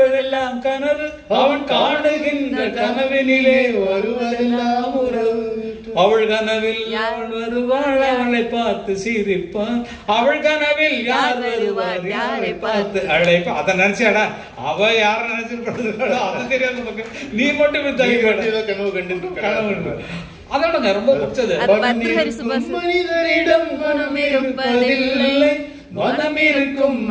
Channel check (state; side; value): identical; both; correlation 1.00